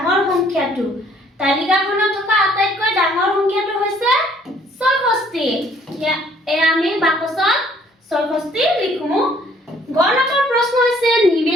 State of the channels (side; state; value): both; normal; correlation 0.61